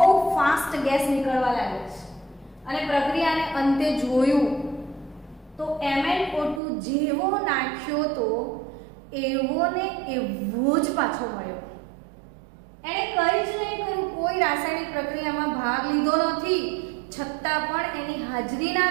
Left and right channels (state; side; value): drops out; left; at 6.6 s